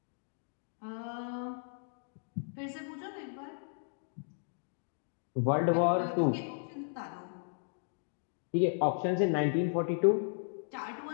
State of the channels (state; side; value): silent; right; digital silence